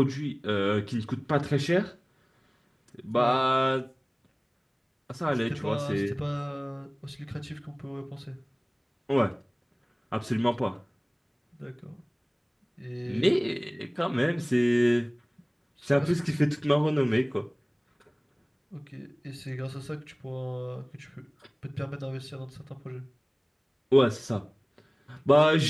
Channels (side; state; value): both; identical; correlation 1.00